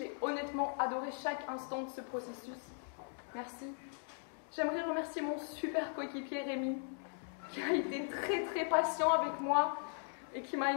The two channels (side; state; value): right; silent; 52 dB below the other